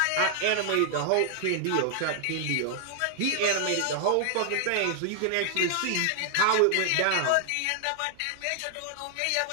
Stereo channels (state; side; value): different; both; correlation 0.00